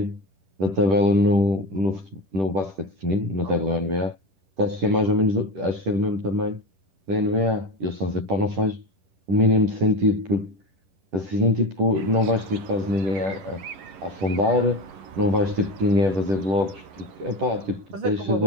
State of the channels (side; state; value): left; late; 10 ms